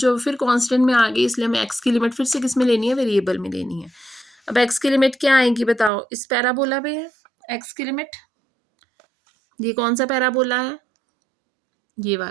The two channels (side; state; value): left; drops out; at 5.9 s